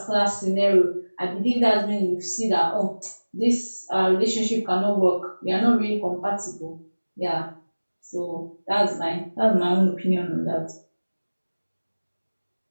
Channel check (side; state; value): both; inverted; correlation -1.00